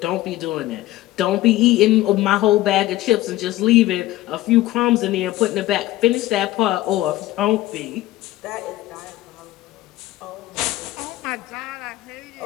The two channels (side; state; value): right; quieter; 16.2 dB